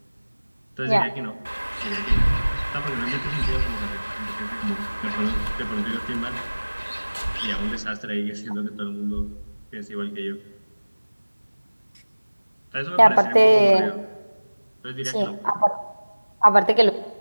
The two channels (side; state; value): both; inverted; correlation -1.00